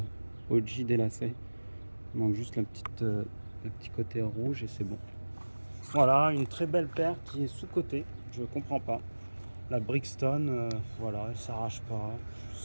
OG des lacets. Il manque juste le petit côté rouge et c'est bon. Voilà, une très belle paire qui est sous-cotée. Je comprends pas. La Brixton, voilà, elle s'arrache pas. Je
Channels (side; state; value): both; inverted; correlation -1.00